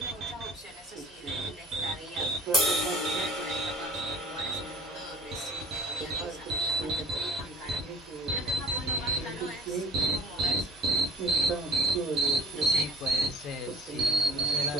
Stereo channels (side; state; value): both; normal; correlation 0.44